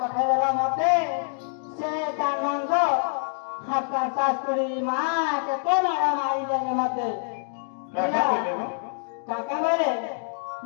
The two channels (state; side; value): silent; right; digital silence